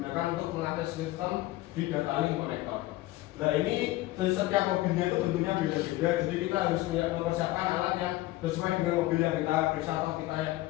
untuk melatih sistem di data link connector. Nah, ini setiap mobilnya itu bentuknya beda-beda, jadi kita harus mempersiapkan alat yang sesuai dengan mobil yang kita periksa atau kita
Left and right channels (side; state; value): right; quieter; 17.6 dB